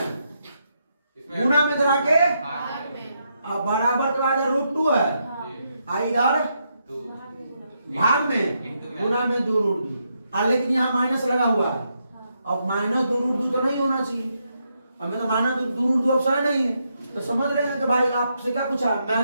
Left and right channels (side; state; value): both; inverted; correlation -0.80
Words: गुना में इधर आके अब बराबर के बाद रूट 2 है, इधर भाग में गुना में 2 रूट 2, लेकिन यहाँ माइनस लगा हुआ है। अब माइनस 2 रूट 2 तो नहीं होना चाहिए, हमें तो माइनस 2 रूट 2 ऑप्शन नहीं है। तो समझ रहे हैं कि भाई आपसे क्या पूछा,